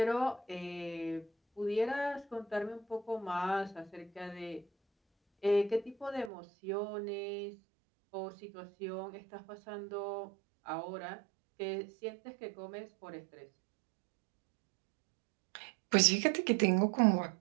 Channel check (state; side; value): drops out; left; at 6.3 s